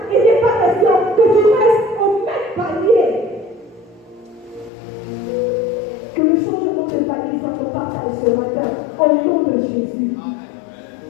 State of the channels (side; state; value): right; drops out; at 4.7 s